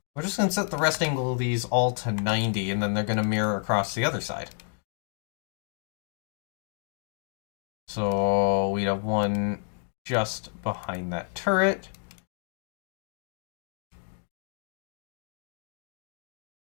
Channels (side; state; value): right; silent; 56 dB below the other